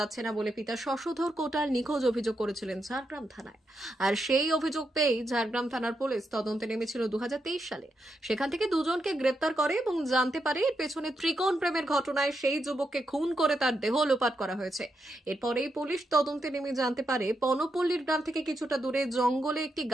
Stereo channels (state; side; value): normal; both; correlation 0.83